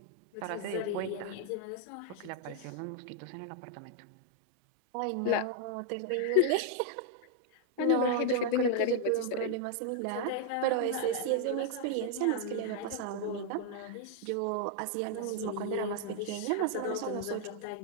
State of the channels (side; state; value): both; different; correlation 0.00